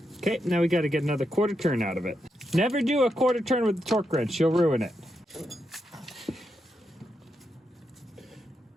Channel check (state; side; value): normal; both; correlation 0.84